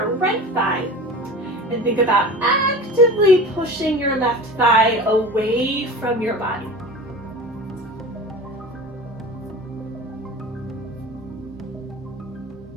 right thigh. And think about actively pushing your left thigh away from your body.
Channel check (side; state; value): both; normal; correlation 0.35